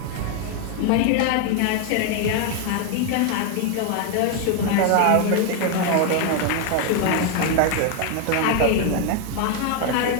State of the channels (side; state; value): both; different; correlation 0.01